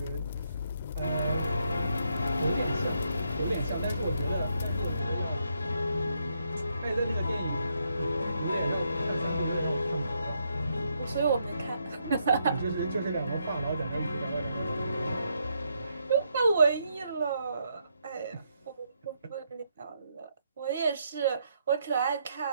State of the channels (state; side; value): inverted; both; correlation -0.77